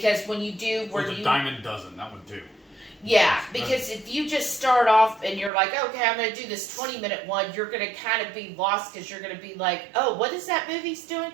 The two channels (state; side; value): drops out; left; at 5.5 s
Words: when you do... Or the diamond dozen, that one too. Yeah, because if you just start off and you're like, okay, I'm going to do this 20-minute one, you're going to kind of be lost because you're going to be like, oh, what is that movie's doing?